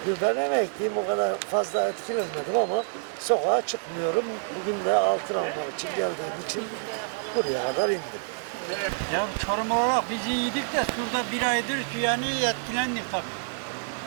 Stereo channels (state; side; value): silent; left; 60 dB below the other